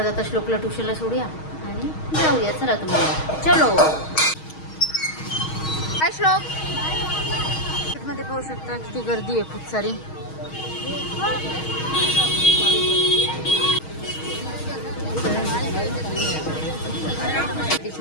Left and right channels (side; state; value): right; late; 6.4 ms